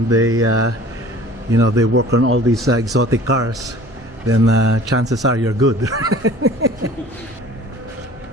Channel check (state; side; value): normal; both; correlation 0.47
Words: they, you know, they work on all these exotic cars, then chances are you're good.